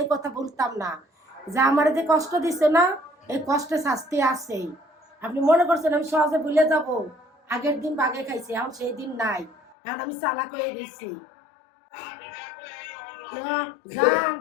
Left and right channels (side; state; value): right; drops out; at 9.8 s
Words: এই কথা বলতাম না। যে আমার যে কষ্ট দিচ্ছে না, এই কষ্টে শাস্তি আছেই। আপনি মনে করছেন আমি সহজে ভুলে যাব? আগের দিন বাগে খাইছি, এখন সেই দিন নাই। এখন আমি চালাক হয়ে গেছি। আমি দেখো এই যান,